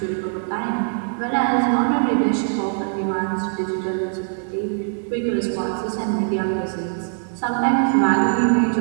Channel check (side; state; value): left; silent; digital silence